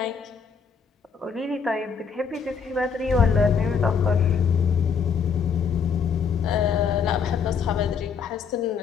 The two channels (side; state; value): right; quieter; 6.3 dB